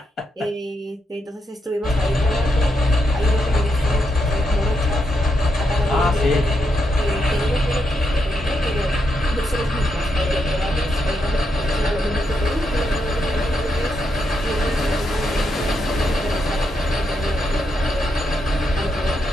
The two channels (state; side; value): normal; both; correlation 0.82